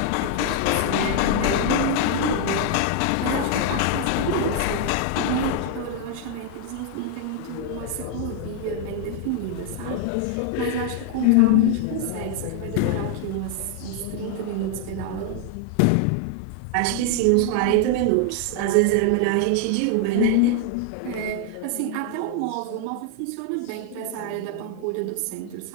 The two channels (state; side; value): different; both; correlation 0.00